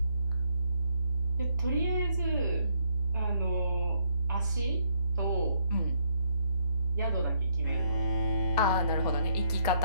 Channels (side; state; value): both; inverted; correlation -0.72